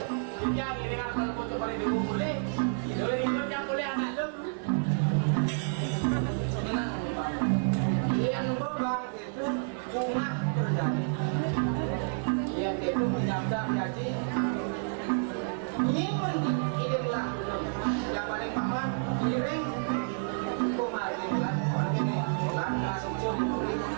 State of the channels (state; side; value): silent; left; 58 dB below the other